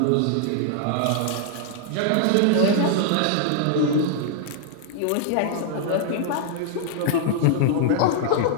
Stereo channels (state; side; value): different; both; correlation 0.00